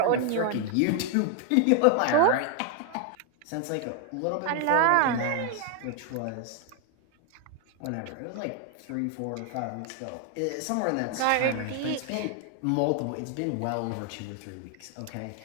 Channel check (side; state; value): both; different; correlation 0.00